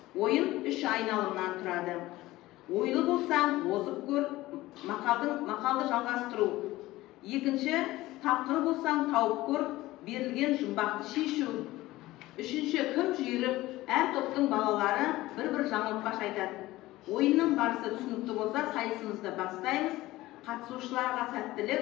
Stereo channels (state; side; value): quieter; right; 17.7 dB